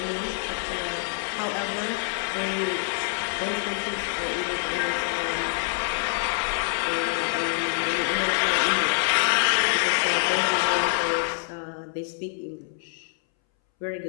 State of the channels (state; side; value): silent; right; 61 dB below the other